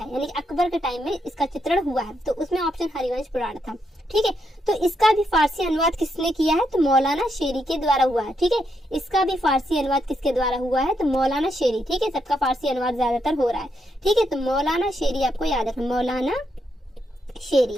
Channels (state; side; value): normal; both; correlation 0.80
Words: यानी कि अकबर के टाइम में इसका चित्रण हुआ है। तो उसमें ऑप्शन हरिवंश पुराण था। ठीक है, तो इसका भी फारसी अनुवाद किसने किया है, तो मौलाना शेरी के द्वारा हुआ है। ठीक है, इसका भी फारसी अनुवाद किसके द्वारा हुआ है, तो मौलाना शेरी। ठीक है, सबका फारसी अनुवाद ज्यादातर हो रहा है। ठीक है, तो मौलाना शेरी आपको याद रखना, मौलाना